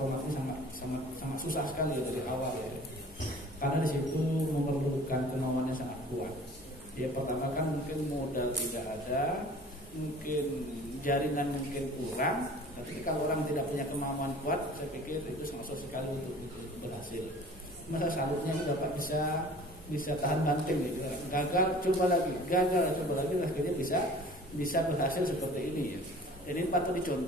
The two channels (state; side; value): normal; both; correlation 0.46